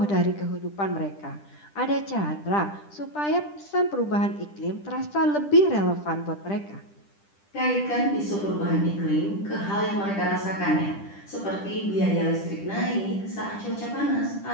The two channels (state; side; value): late; right; 10 ms